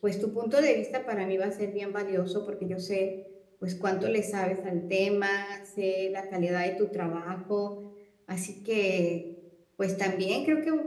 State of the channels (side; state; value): both; identical; correlation 1.00